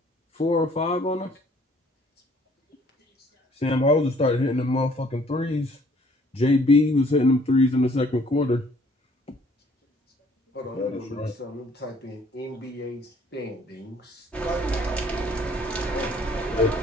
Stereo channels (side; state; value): both; normal; correlation 0.60